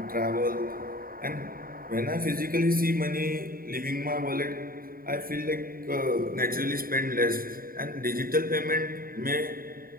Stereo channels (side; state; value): left; late; 0.42 ms